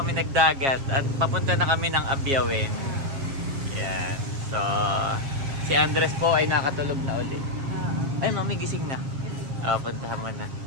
nagdagat. At papunta na kami ng Abyawin. Yan. So, si Andres po ay nakatulog na ulit. Ay, Mami, gising na. Puntahan mo na.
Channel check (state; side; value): late; left; 7.4 ms